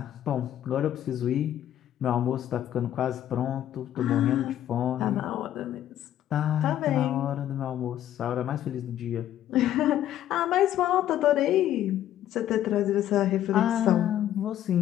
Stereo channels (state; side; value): quieter; right; 11.8 dB